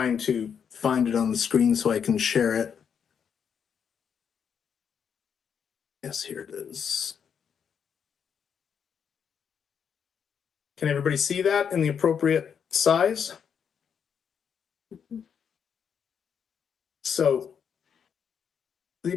to find it on the screen so I can share it. Yes, here it is. Can everybody see that in the appropriate size? So the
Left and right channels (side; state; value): right; quieter; 7.4 dB